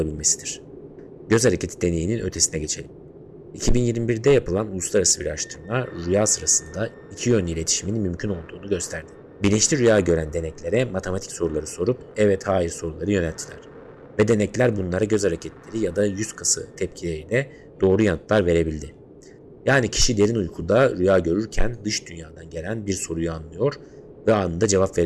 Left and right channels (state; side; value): identical; both; correlation 1.00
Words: Göz hareketi deneyinin ötesine geçelim. 2021'de yapılan uluslararası bir araştırma rüya sırasında iki yönlü iletişimin mümkün olduğunu gösterdi. Bilinçli rüya gören deneklere matematik soruları sorup evet hayır soruları yönelttiler. Ve denekler bunlara göz hareketleri ya da yüz kası tepkileriyle doğru yanıtlar verebildi. Yani kişi derin uykuda rüya görürken dış dünyadan gelen bir soruyu anlıyor ve anında cevap